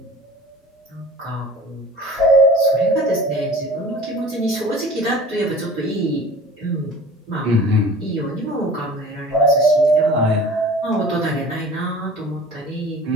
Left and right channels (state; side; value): normal; both; correlation 0.42